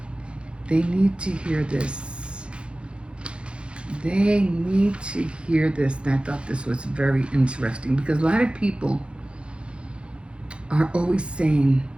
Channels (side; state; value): left; late; 0.057 ms